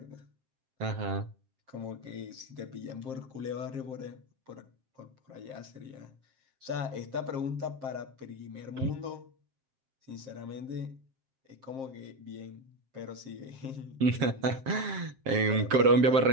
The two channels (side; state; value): left; late; 7.6 ms